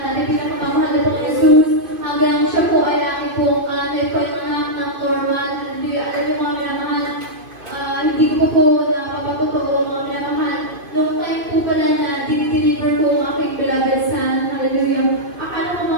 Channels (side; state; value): left; late; 2.3 ms